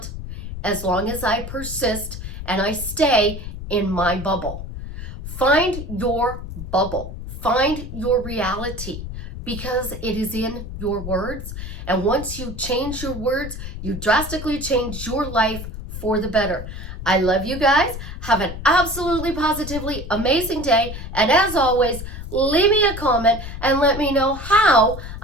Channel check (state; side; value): noise; left; rumble, 9 dB below the sound